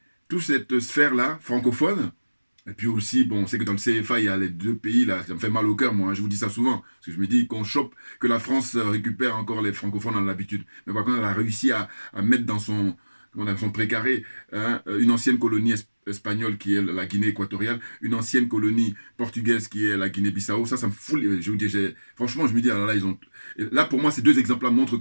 toute cette sphère-là, francophone, et puis aussi, bon, on sait que dans le CFA, il y a les deux pays, là, ça me fait mal au cœur, moi, hein, je vous dis ça souvent, parce que je me dis qu'on chope, que la France récupère encore les francophones dans l'habitude. Mais par contre, elle a réussi à mettre dans son précaré, hein, une ancienne colonie espagnole qui est la Guinée équatoriale, une ancienne colonie portugaise qui est la Guinée-Bissau. Ça me fout. Je vous dis, franchement, je me dis, alors là, là, pour moi, ces deux exemples-là montrent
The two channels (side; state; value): both; inverted; correlation -1.00